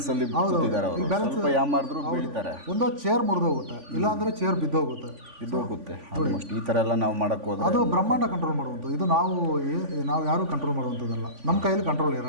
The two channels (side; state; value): left; late; 3.5 ms